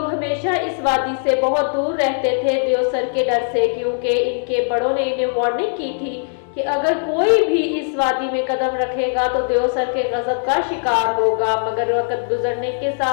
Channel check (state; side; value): silent; right; digital silence